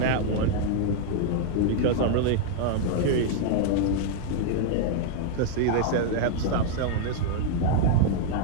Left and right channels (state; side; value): different; both; correlation 0.00